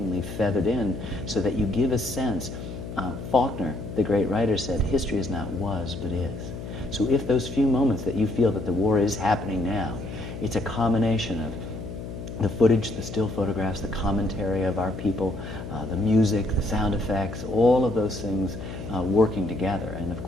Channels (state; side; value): noise; left; hum, 9 dB below the sound